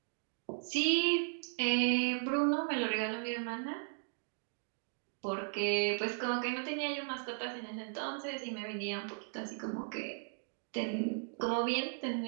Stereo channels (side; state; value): left; silent; digital silence